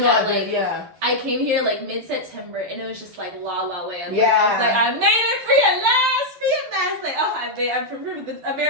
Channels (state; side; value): late; left; 12 ms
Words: not that, like, I came here like mid-September and it was just like la la land. Yeah. I was like, I made it free at last. Like, oh, I've removed the